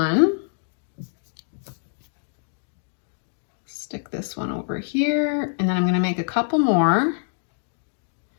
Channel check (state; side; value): silent; right; digital silence